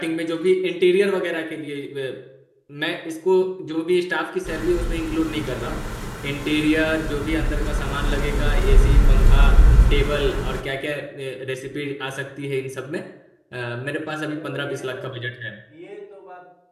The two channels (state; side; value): identical; both; correlation 1.00